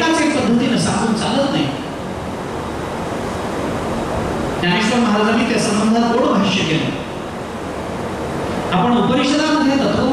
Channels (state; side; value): identical; both; correlation 1.00